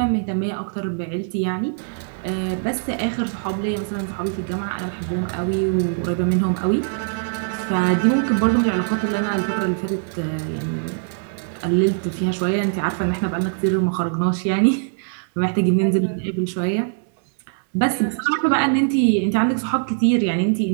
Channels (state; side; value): silent; left; digital silence